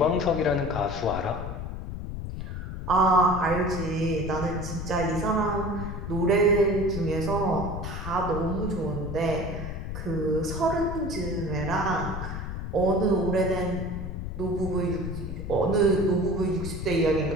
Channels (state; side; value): noise; left; rumble, 6 dB below the sound